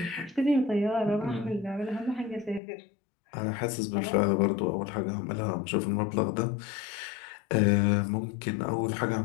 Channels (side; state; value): right; drops out; at 2.6 s